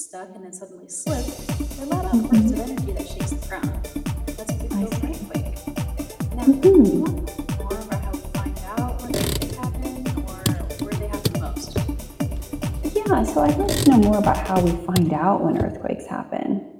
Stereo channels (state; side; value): identical; both; correlation 1.00